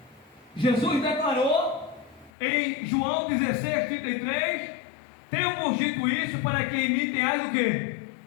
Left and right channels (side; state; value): right; drops out; at 2.3 s